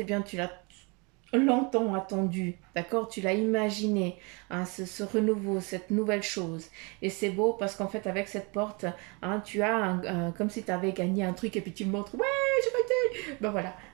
bien, tu l'as longtemps attendue, d'accord? Tu l'as imaginé, hein, ce renouveau, cette nouvelle chose. Et c'est beau parce qu'en fait, avec cette porte, hein, tu as comme si tu avais gagné un truc et puis tu le montres. Ouais, j'ai gagné! Ben voilà,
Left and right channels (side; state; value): left; quieter; 30.4 dB